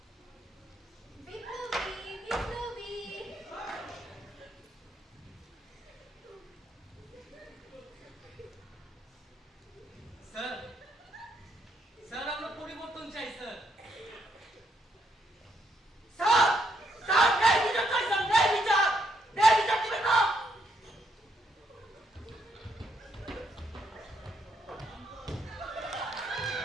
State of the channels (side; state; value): both; normal; correlation 0.75